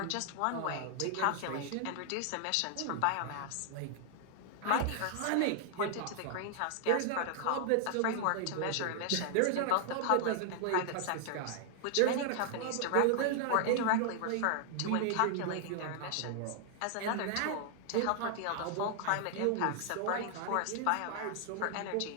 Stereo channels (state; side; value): different; both; correlation 0.00